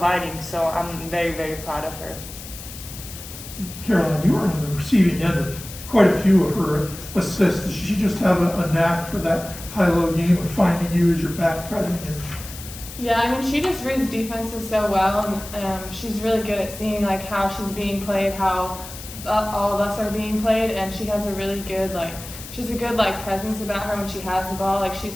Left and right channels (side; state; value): left; noise; hiss, 13 dB below the sound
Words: So I'm very, very proud of her. Caroline, you were on the receiving end of quite a few of her assists. Does she just have a knack for that high-low game of finding you as you're back cutting? Yeah, she just reads defenses so well, and she's really good at seeing how she's being played, how all of us are being played, and she has a really good she's a good presence about her when she has the ball. She's